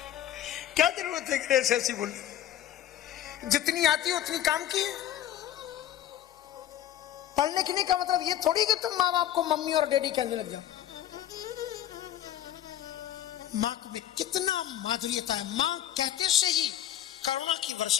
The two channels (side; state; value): right; quieter; 11.7 dB